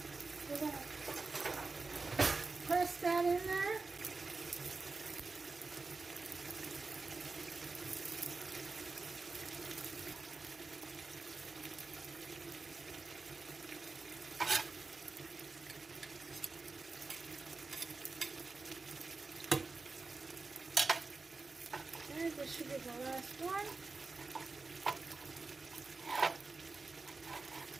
We're going to press that in there. Okay, this should be the last one.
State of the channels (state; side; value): quieter; left; 4.0 dB